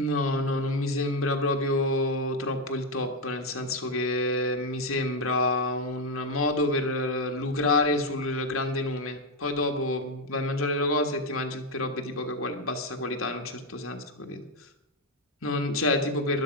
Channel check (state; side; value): normal; both; correlation 0.06